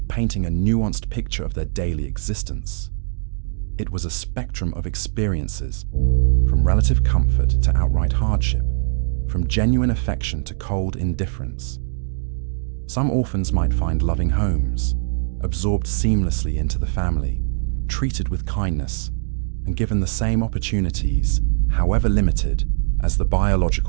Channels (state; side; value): silent; left; digital silence